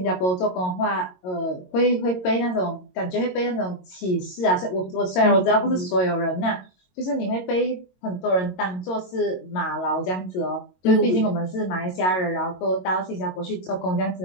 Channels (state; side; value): late; right; 22 ms